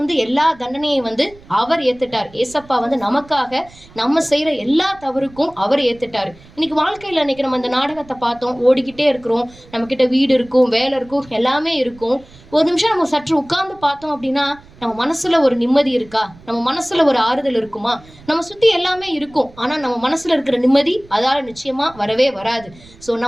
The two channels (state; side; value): noise; right; rumble, 24 dB below the sound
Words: எல்லா தண்டனையும் வந்து அவர் ஏத்துட்டார். ஏசப்பா வந்து நமக்காக நம்ம செய்யற எல்லா தவறுக்கும் அவர் ஏத்துட்டாரு. இன்னைக்கு வாழ்க்கையில இன்னைக்கு நம்ம இந்த நாடகத்தை பார்த்தோம், ஓடிக்கிட்டே இருக்கிறோம், நம்ம கிட்ட வீடு இருக்கும், வேலை இருக்கும், எல்லாமே இருக்கும். ஒரு நிமிஷம் நம்ம சற்று உட்கார்ந்து பார்த்தோம் அப்படின்னா நம்ம மனசுல ஒரு நிம்மதி இருக்கா, நம்ம மனசுல ஒரு ஆறுதல் இருக்குமா? நம்ம சுத்தி எல்லாமே இருக்கும், ஆனா நம்ம மனசுல இருக்கிற நிம்மதி அதால நிச்சயமா வரவே வராது. ஸோ